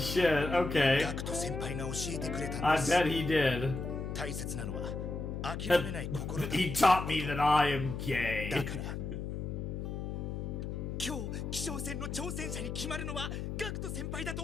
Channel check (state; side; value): noise; left; hum, 4 dB below the sound